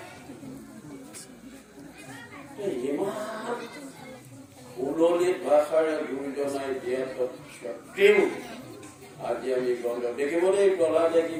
ইমান সুললিত ভাষাৰে গুৰুজনাই দিয়াত স্বত্তেও আজি আমি গন্ধ দেখিব দেই প্ৰহ্লাদে কি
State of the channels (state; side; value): identical; both; correlation 1.00